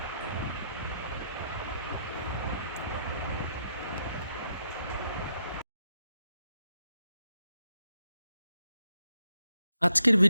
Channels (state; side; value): inverted; both; correlation -0.79